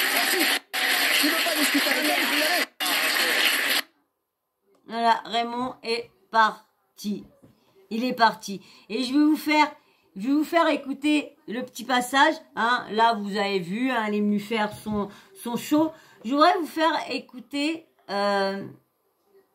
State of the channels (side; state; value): both; identical; correlation 1.00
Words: Tu veux pas discuter avec elle, tu peux y aller. Voilà, Raymond est parti. Il est parti. Et je vais vous faire écouter le petit passage. Hein. Là, vous avez vu, hein, elle est venue faire son show. Je voudrais vous faire écouter